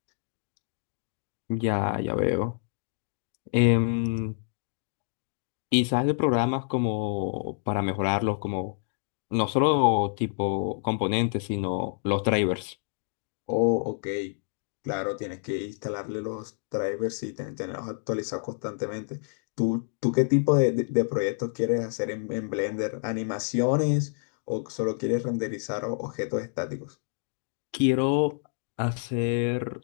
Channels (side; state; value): right; silent; digital silence